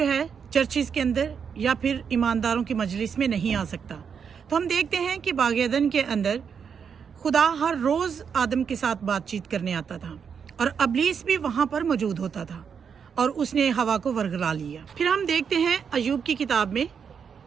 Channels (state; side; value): quieter; left; 6.8 dB